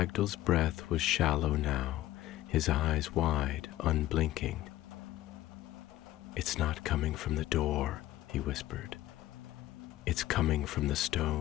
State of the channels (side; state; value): right; quieter; 15.1 dB